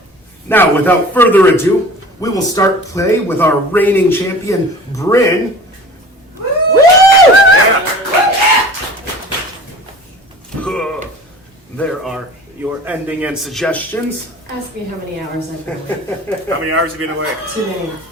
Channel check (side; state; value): both; normal; correlation 0.42